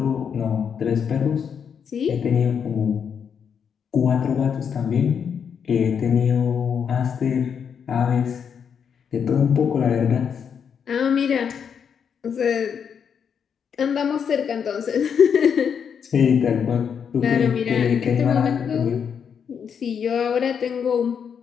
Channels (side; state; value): right; quieter; 7.2 dB